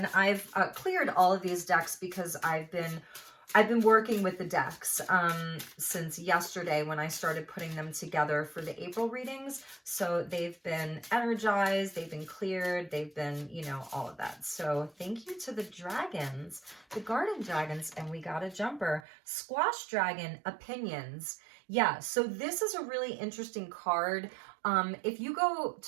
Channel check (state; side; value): drops out; left; at 19.0 s